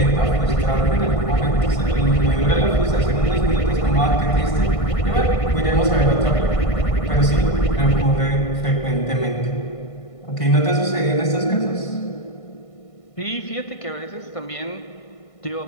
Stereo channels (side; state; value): right; late; 1.5 ms